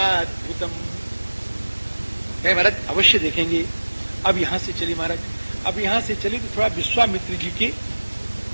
महाराज अवश्य देखेंगे। अब यहां से चले महाराज, अब यहां से चले तो थोड़ा विश्वामित्र जी के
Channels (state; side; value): inverted; both; correlation -1.00